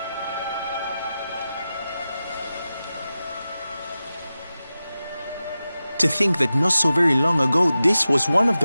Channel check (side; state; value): both; inverted; correlation -0.93